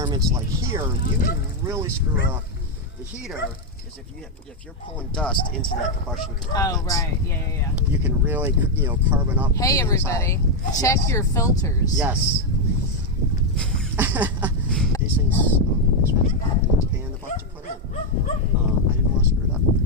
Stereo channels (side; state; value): both; normal; correlation 0.03